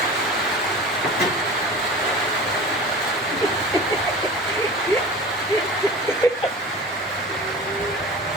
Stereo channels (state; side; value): normal; both; correlation 0.36